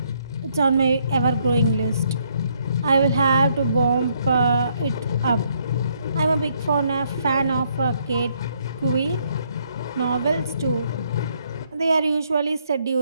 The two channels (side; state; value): both; inverted; correlation -0.71